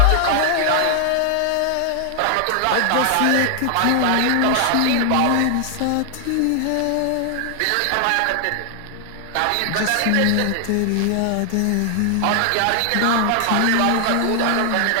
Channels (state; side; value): different; both; correlation 0.00